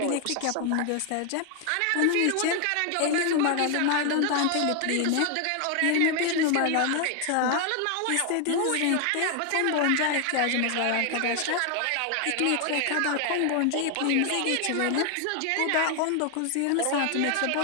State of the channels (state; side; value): different; both; correlation 0.00